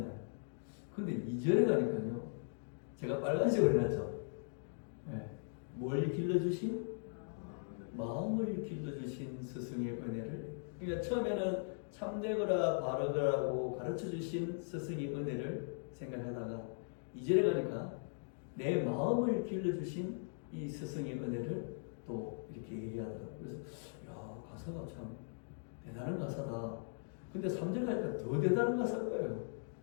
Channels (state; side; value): silent; right; digital silence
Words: 근데 2절에 가니까요, 제가 빨간색으로 해놨죠. 네, 뭘 길러주신? 마음을 길러주신 스승의 은혜를. 그러니까 처음에는 참되거라 바르거라고 가르쳐주신 스승의 은혜를 생각하다가 2절에 가니까 내 마음을 길러주신 이 스승의 은혜를 또 이렇게 얘기하더라고요. 그래서 가사가 참 대단한 가사다. 근데 3절 가니까 더 대단한 가사인 거예요.